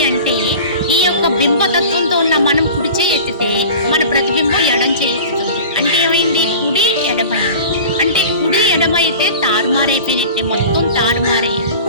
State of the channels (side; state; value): both; inverted; correlation -0.38